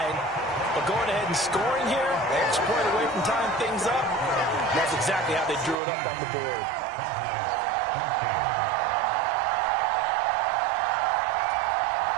But going ahead and scoring here, an extra point away from tying things up, that's exactly how they drew it up on the board.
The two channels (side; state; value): left; drops out; at 5.8 s